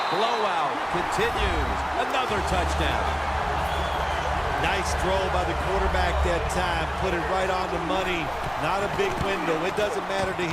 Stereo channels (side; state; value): both; identical; correlation 1.00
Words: blowout continues. Another touchdown. Nice throw by the quarterback that time. Put it right on the money. Not a big window. It doesn't matter to